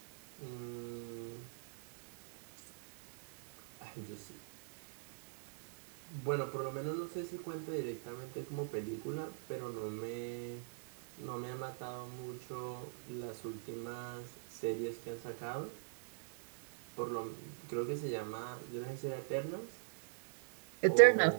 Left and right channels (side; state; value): left; silent; digital silence